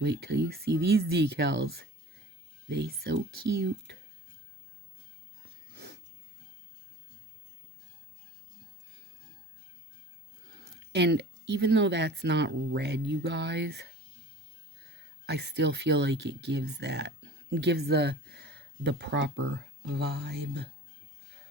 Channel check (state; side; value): normal; both; correlation 0.41